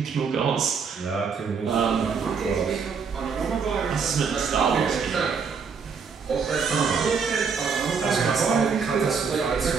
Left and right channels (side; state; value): left; quieter; 5.8 dB